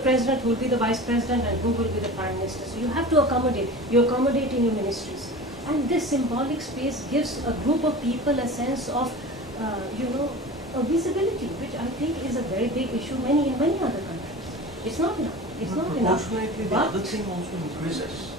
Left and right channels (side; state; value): both; normal; correlation 0.35